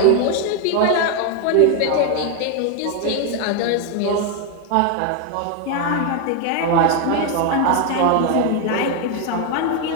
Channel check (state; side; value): different; both; correlation 0.01